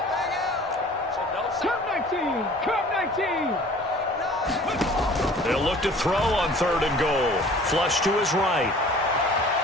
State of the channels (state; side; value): normal; both; correlation 0.48